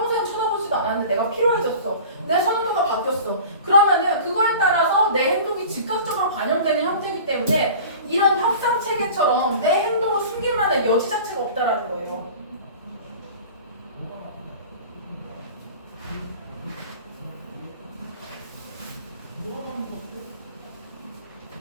쳐다보지도 않았는데 내가 필요해졌어. 내 선호도가 바뀌었어. 그러면은 그거에 따라서 내 행동이 즉각적으로 반영되는 형태이기 때문에 이런 협상 체계처럼 내 행동을 숨길 만한 여지 자체가 없다라는 거예요.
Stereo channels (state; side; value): inverted; both; correlation -0.40